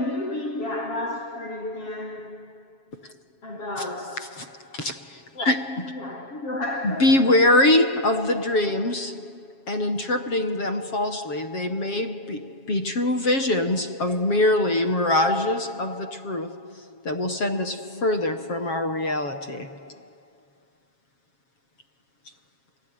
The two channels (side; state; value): right; late; 7.3 ms